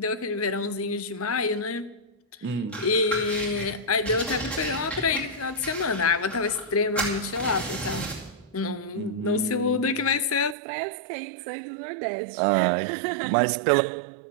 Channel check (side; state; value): left; drops out; at 10.6 s